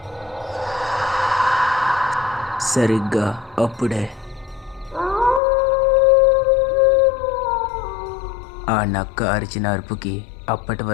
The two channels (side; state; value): right; drops out; at 5.4 s